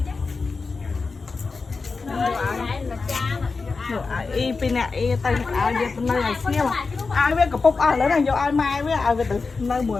y pin nè y tay ai về nơi này xíu mà ai biết cặp bốc ai lấy này vô ai mai với ai về từ nơi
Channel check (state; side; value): quieter; right; 4.3 dB